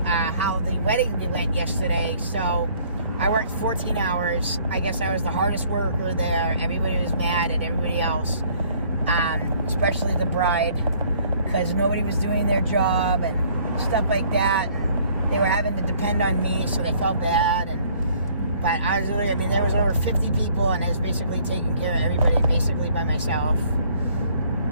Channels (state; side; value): inverted; both; correlation -0.59